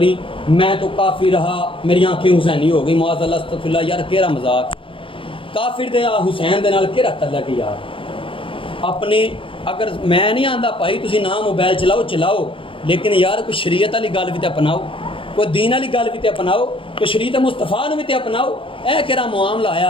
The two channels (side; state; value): right; late; 0.25 ms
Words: میں تو کافر رہا میری آنکھیں حسینی ہو گئی، معاذ اللہ استغفر اللہ۔ یار کیڑا مذاق، کافر دے حسین دے نال کیڑا تعلق یار؟ اپنے اگر میں نہیں آندا بھائی تسی نہ موبائل چلاؤ لیکن یار کوئی شریعت والی گل بھی تے اپناؤ، کوئی دین والی گل بھی تے اپناؤ، کوئی شریعت مصطفیٰ نو بھی تے اپناؤ۔ اے کیڑا معاملہ